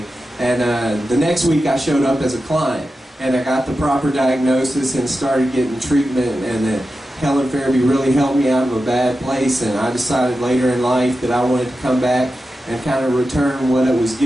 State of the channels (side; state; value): both; normal; correlation 0.92